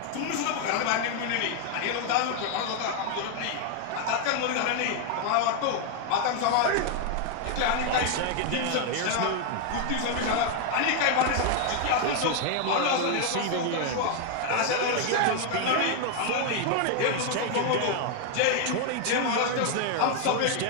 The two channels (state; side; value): different; both; correlation 0.00